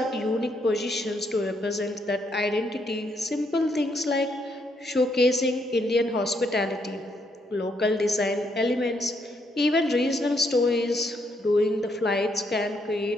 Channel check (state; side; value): normal; both; correlation 0.74